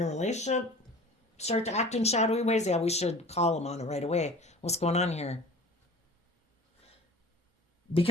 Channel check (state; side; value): normal; both; correlation 0.43